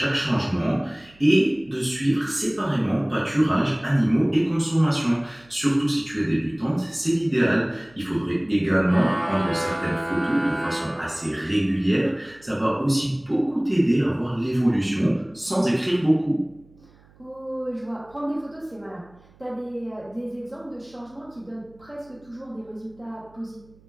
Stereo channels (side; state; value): right; noise; hum, 28 dB below the sound